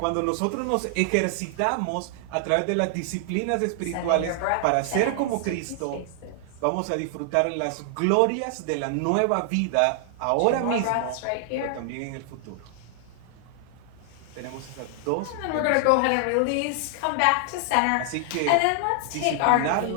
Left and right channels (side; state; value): both; different; correlation 0.00